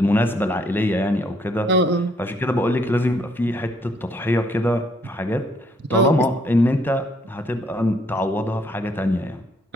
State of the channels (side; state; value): both; normal; correlation 0.69